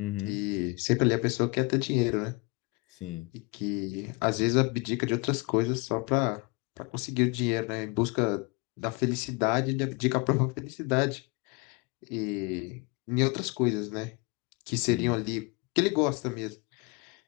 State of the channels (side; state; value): right; quieter; 27.8 dB